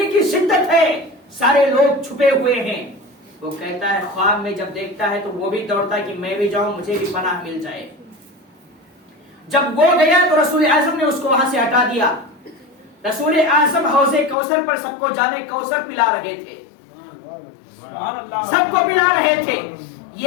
کی شدت ہے، سارے لوگ چھپے ہوئے ہیں۔ وہ کہتا ہے خواب میں جب دیکھتا ہے تو وہ بھی دوڑتا ہے کہ میں بھی جاؤں، مجھے بھی پناہ مل جائے۔ جب وہ گیا تو رسول اعظم نے اس کو وہاں سے ہٹا دیا۔ رسول اعظم حوض کوثر پر سب کو جانے کوثر پلا رہے تھے، سب کو پلا رہے تھے،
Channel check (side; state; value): right; drops out; at 14.4 s